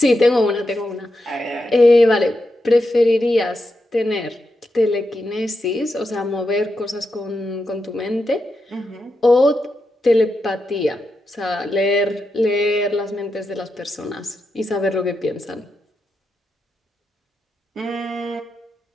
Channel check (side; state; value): both; normal; correlation 0.87